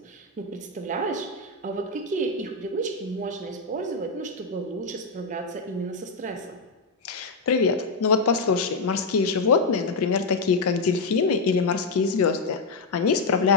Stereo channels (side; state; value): right; quieter; 3.6 dB